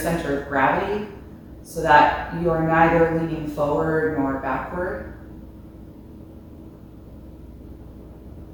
of gravity so that you are neither leaning forward nor backward.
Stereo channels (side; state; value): both; identical; correlation 1.00